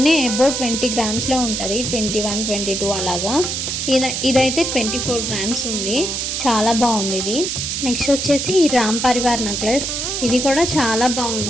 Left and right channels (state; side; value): noise; right; hiss, 2 dB below the sound